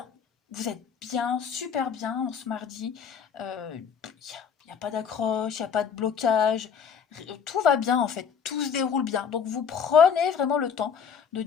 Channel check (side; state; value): right; quieter; 7.0 dB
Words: Vous êtes bien, super bien en ce mardi. Il n'y a pas d'accroche, il n'y a pas de blocage. Tout va bien en fait, tout se déroule bien. Donc vous prenez vraiment le temps de